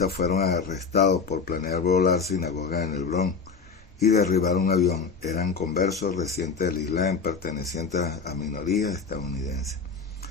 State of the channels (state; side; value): quieter; right; 5.2 dB